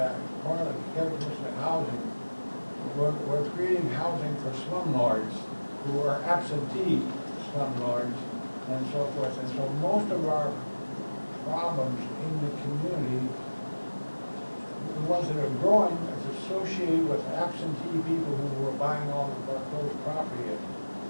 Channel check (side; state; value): both; inverted; correlation -1.00